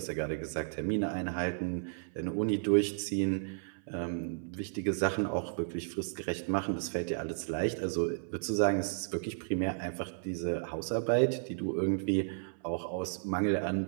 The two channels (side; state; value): left; silent; 56 dB below the other